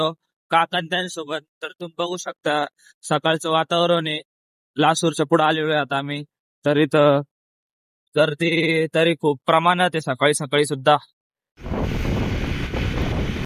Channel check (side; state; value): both; identical; correlation 1.00